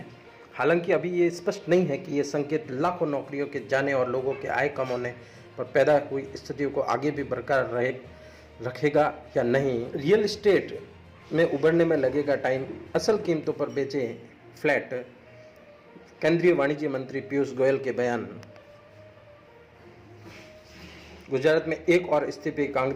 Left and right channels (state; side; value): identical; both; correlation 1.00